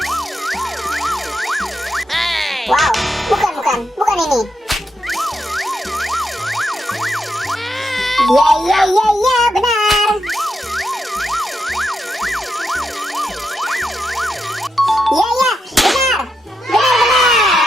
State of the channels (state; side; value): normal; both; correlation 0.84